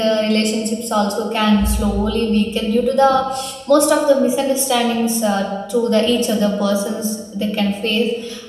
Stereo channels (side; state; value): both; identical; correlation 1.00